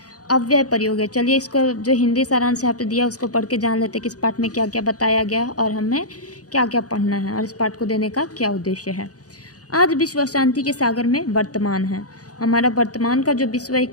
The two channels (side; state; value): right; late; 0.67 ms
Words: अव्यय प्रयोग है। चलिए इसको जो हिंदी सारांश यहाँ पे दिया उसको पढ़ के जान लेते कि इस पाठ में क्या क्या बताया गया है और हमें क्या क्या पढ़ना है और इस पाठ को देने का क्या उद्देश्य है। आज विश्व अशांति के सागर में वर्तमान है। हमारा वर्तमान का जो विश्व है